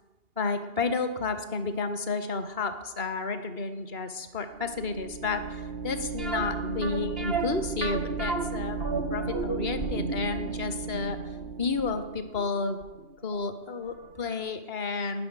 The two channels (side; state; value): left; late; 2.8 ms